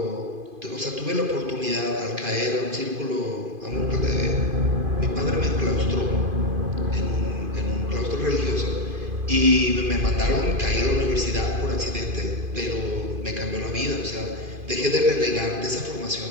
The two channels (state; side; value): late; left; 2.5 ms